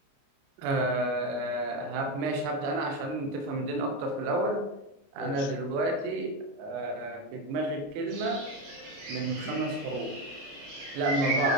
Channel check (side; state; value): left; late; 29 ms